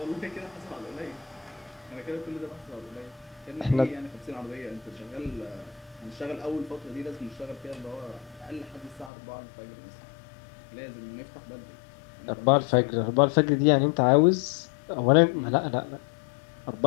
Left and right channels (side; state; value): right; drops out; at 9.1 s